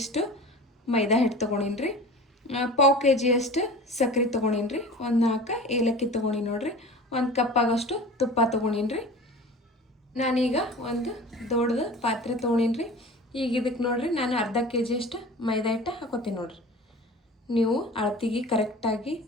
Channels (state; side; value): normal; both; correlation 0.38